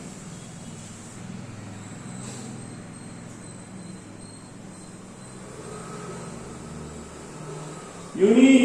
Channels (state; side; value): identical; both; correlation 1.00